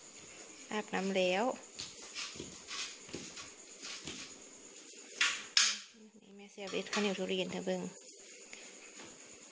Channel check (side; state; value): both; identical; correlation 1.00